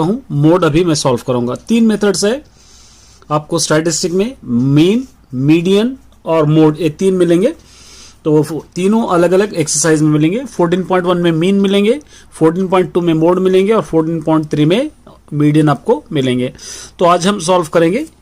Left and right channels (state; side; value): identical; both; correlation 1.00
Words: हूं। मोड अभी मैं सॉल्व करूंगा। 3 मेथड्स है आपको स्टैटिस्टिक में, मीन, मीडियन और मोड, ये 3 मिलेंगे। तो वो तीनों अलग अलग एक्सरसाइज में मिलेंगे। 14.1 में मीन मिलेंगे, 14.2 में मोड मिलेंगे और 14.3 में मीडियन आपको मिलेंगे। तो आज हम सॉल्व करेंगे